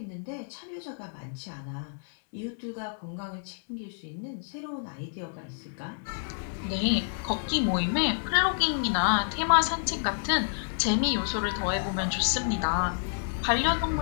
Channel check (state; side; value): silent; right; digital silence